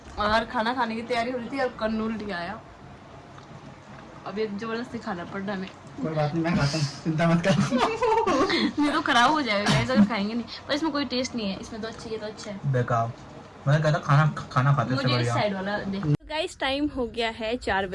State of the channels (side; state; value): both; identical; correlation 1.00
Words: और खाना खाने की तैयारी हो रही थी और कन्नू उल्टी आया। अब ये जबरदस्ती खाना पड़ रहा है। कोई बात नहीं, मैं खाता हूँ, चिंता मत कर। नहीं तो खराब हो जाएगा गाइस अगर खाएंगे नहीं। पर इसमें कोई टेस्ट नहीं है, इसमें तो अच्छा है, तो अच्छा है। बेकार, मैं कहता खाना खाते मुझे इस साइड वाला दे। तो गाइस टाइम हो गया है 4